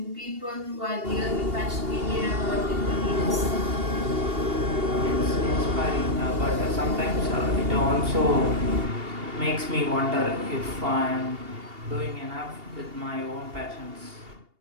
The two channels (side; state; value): left; late; 2.8 ms